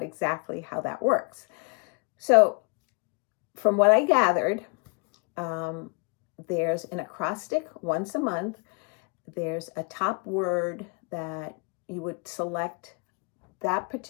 exactly how that works. So from what I gathered, there's an acrostic once a month. There's a top word that you would select that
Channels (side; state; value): right; quieter; 34.3 dB